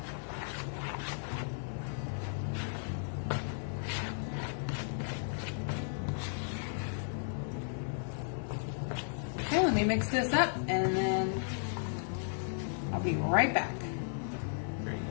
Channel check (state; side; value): silent; right; 55 dB below the other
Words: Okay, let me mix this up and then I'll be right back.